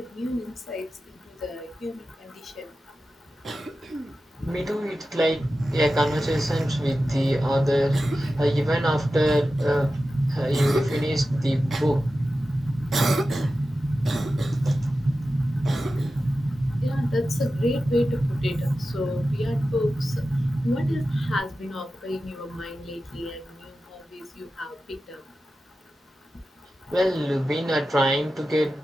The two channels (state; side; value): normal; both; correlation 0.93